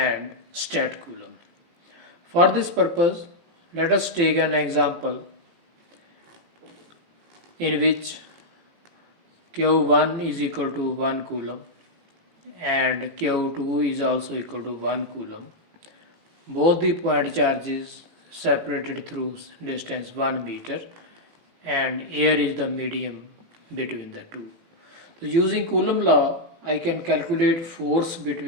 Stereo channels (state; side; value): late; left; 18 ms